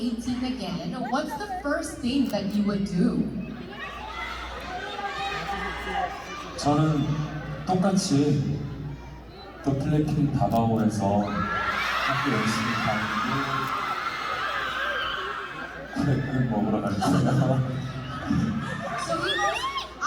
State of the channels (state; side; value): identical; both; correlation 1.00